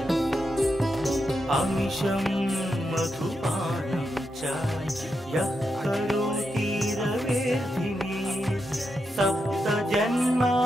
अमिषं मधुपानं च यः करोति रवेर्धिनी सप्तजन्म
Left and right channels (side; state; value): both; normal; correlation 0.85